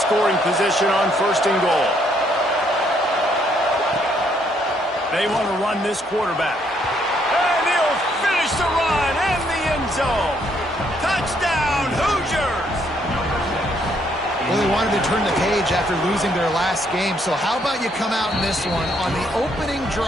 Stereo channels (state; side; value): normal; both; correlation 0.70